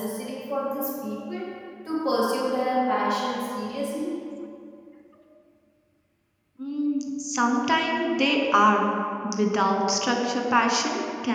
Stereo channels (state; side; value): identical; both; correlation 1.00